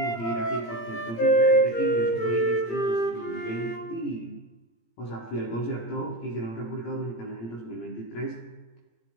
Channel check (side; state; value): right; late; 17 ms